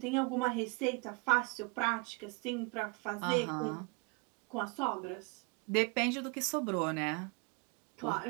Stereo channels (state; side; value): quieter; left; 29.3 dB